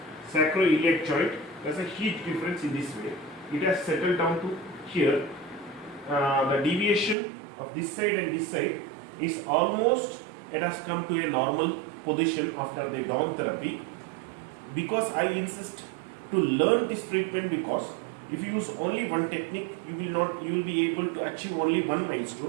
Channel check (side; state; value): left; drops out; at 7.2 s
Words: Sacroiliac joint, there's a huge difference in this way. It has settled down to here. The deviation of this side and this side is almost, it has come to a normal position after the Dawn therapy. Because I insist to learn this treatment, because if you use only one technique, you will be able to achieve only one